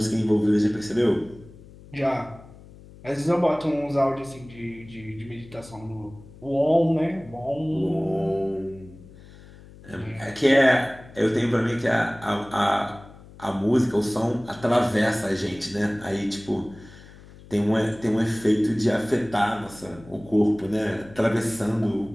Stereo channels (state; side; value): noise; left; hum, 20 dB below the sound